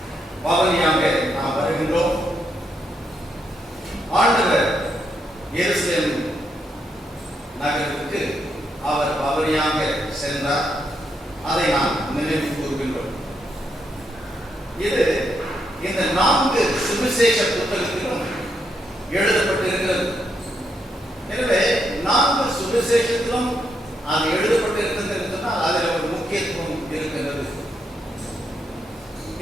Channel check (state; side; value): normal; both; correlation 0.79